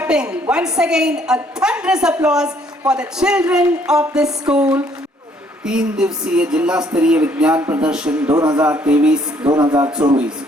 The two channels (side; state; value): both; normal; correlation 0.64